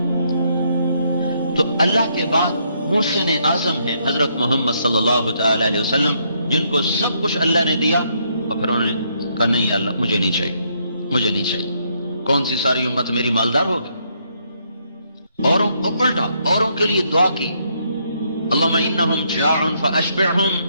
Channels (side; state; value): both; inverted; correlation -0.73